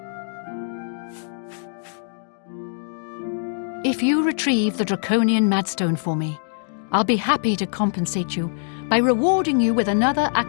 If you retrieve the Draconian Madstone for me, I'll be happy to compensate you by rewarding you with another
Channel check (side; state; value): right; silent; digital silence